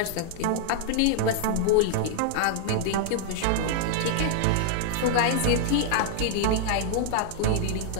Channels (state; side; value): different; both; correlation 0.00